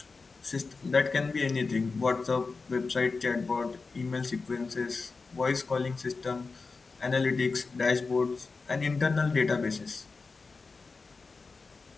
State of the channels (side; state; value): right; quieter; 4.2 dB